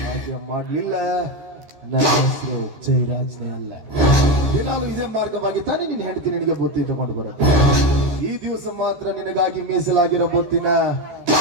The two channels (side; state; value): left; late; 14 ms